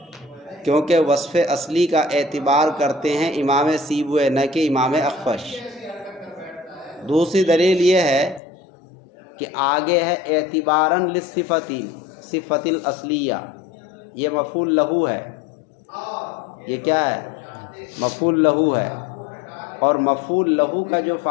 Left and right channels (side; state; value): right; drops out; at 8.4 s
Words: کیونکہ وصف اصلی کا اعتبار کرتے ہیں امام سیبویہ نہ کہ امام اخفش۔ دوسری دلیل یہ ہے کہ آگے ہے اعتباراً للصفتی، صفت الاصلیہ، یہ مفعول لہو ہے، یہ کیا ہے؟ مفعول لہو ہے، اور مفعول لہو کا جو